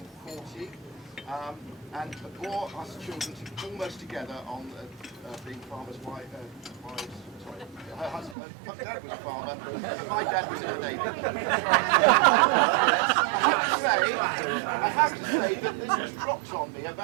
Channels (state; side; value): drops out; left; at 8.3 s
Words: And bore us children almost together on being farmers' wives. Sorry, her husband, my dad was a farmer, and my dad was in the Navy. I have to say that this was dropped on me